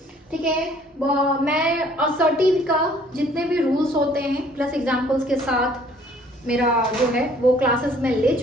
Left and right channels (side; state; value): both; normal; correlation 0.58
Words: ठीक है, मैं असर्टिव का जितने भी रूल्स होते हैं प्लस एग्जांपल्स के साथ मेरा जो है वो क्लासेस में ले